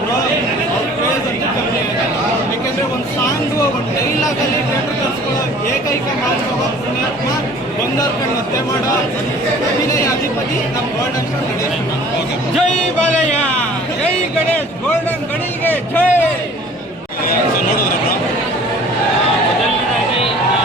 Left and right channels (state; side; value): normal; both; correlation 0.49